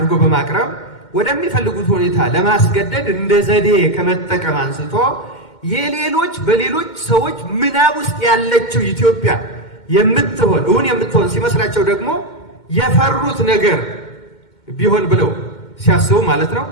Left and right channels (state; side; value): late; right; 2.1 ms